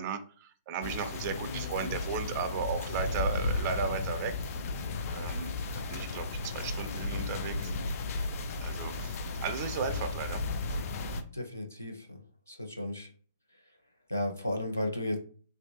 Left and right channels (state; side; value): inverted; both; correlation -0.53